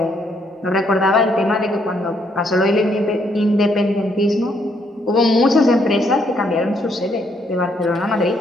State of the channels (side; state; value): both; normal; correlation 0.72